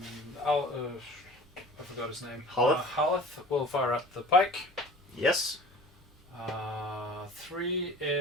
I forgot his name. Haleth? Haleth will fire at the pike. Yes. 3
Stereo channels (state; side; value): normal; both; correlation 0.43